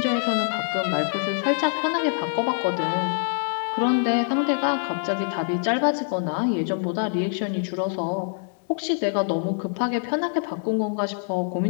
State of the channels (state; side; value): silent; right; digital silence